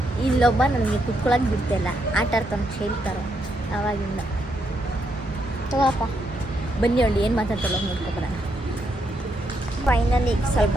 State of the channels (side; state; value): both; normal; correlation 0.78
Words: ಇಲ್ಲೊಬ್ಬ ನನಗೆ ಕುತ್ಕೊಳ್ಳೋಕೆ ಬಿಡ್ತಾಯಿಲ್ಲ, ಆಟ ಆಡ್ತಾನೆ, ಹೇಳ್ತಾರೆ ಆವಾಗಿಂದ. ತಗೋಪ್ಪ, ಬನ್ನಿ ಅವಳು ಏನು ಮಾತಾಡ್ತಾಳೋ ನೋಡ್ಕೊಬರೋಣ. ಫೈನಲಿ ಸ್ವಲ್ಪ